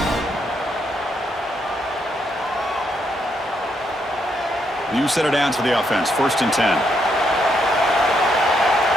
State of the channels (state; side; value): normal; both; correlation 0.77